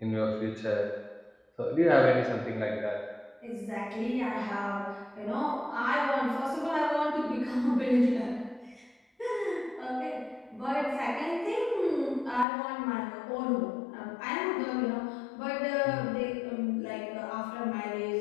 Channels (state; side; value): drops out; right; at 12.5 s